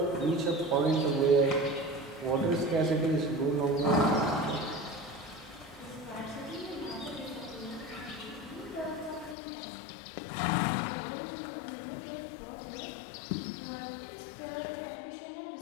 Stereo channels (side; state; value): right; drops out; at 9.3 s